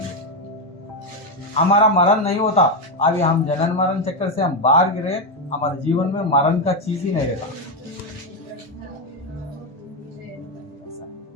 हमारा मरण नहीं होता, अभी हम जनन मरण चक्कर से हम बाहर गिरे, हमारे जीवन में मरण का चीज ही नहीं रहता।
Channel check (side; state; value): both; normal; correlation 0.07